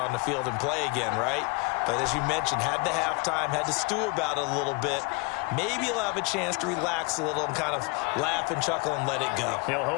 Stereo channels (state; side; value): quieter; right; 29.8 dB